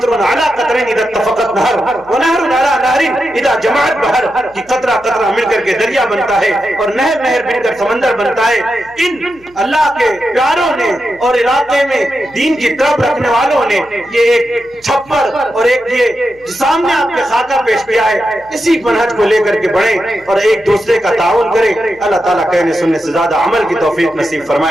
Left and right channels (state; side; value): noise; left; hum, 28 dB below the sound